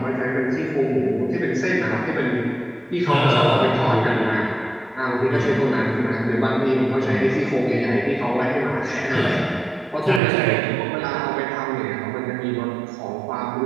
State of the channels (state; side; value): drops out; left; at 10.2 s